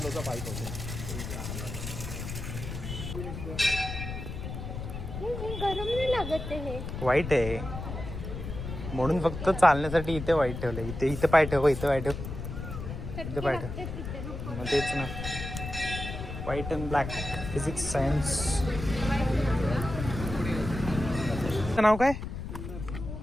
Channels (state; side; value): noise; left; rumble, 7 dB below the sound